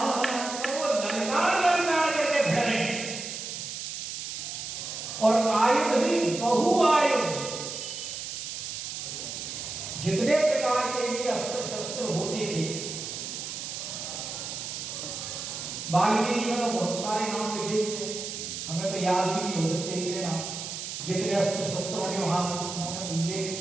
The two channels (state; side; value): noise; right; hiss, 6 dB below the sound